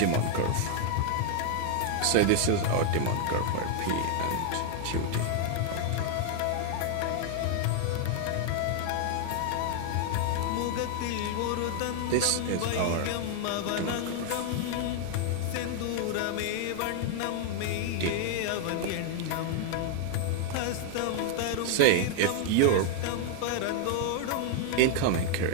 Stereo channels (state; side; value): different; both; correlation 0.00